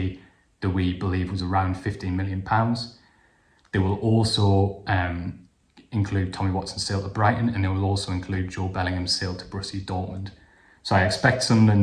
that we believe was around £15 million. They will also include Tommy Watson's sale to Brighton, and they will also include Joe Bellingham's sale to Borussia Dortmund. So I expect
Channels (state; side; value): identical; both; correlation 1.00